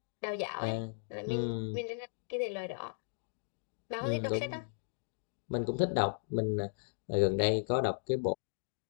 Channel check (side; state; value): right; silent; digital silence